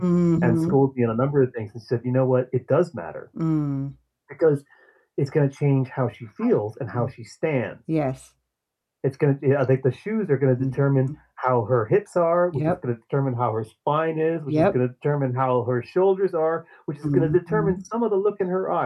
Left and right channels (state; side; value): identical; both; correlation 1.00